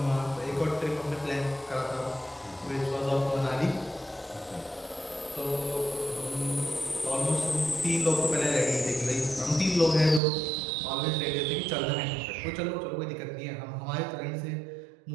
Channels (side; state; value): left; drops out; at 10.2 s